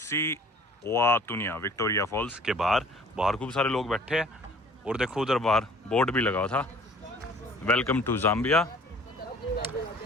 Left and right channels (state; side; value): normal; both; correlation 0.51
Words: ओआतुनिया विक्टोरिया फॉल्स के बाहर खूब सारे लोग बैठे हैं, और देखो उधर बाहर बोर्ड भी लगा हुआ था, welcome to Zambia